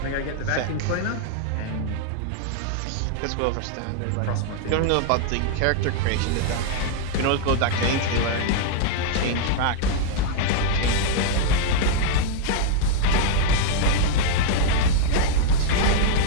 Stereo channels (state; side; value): different; both; correlation -0.01